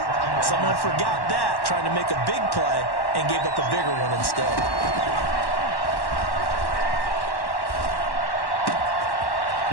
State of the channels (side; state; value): right; late; 1.1 ms